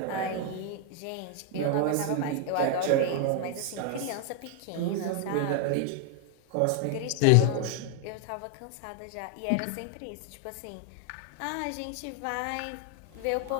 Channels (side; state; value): both; different; correlation 0.00